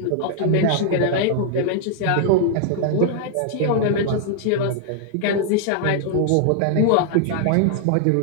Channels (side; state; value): both; different; correlation -0.01